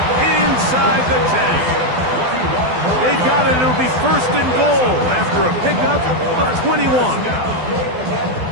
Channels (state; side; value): late; left; 12 ms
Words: inside the 10. They've got it. It'll be first and goal after a pickup of 21.